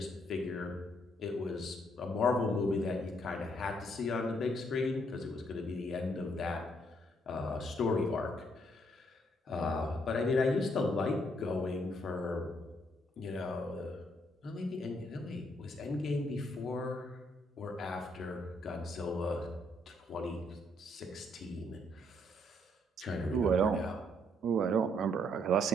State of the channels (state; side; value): normal; both; correlation 0.71